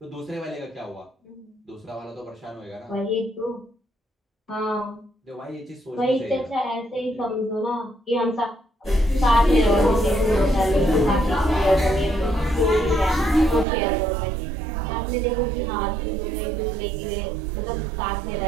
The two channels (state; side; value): drops out; left; at 13.7 s